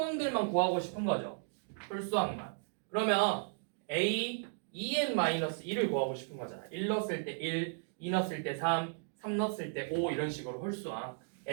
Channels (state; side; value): silent; left; digital silence